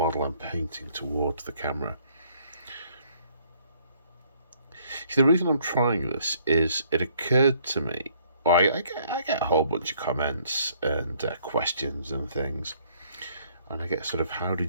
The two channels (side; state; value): both; inverted; correlation -0.64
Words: I'm painting towards the camera. See, the reason I'm trying this is it occurred to me, well, I get a whole bunch of comments and questions and things, and I get sort of, how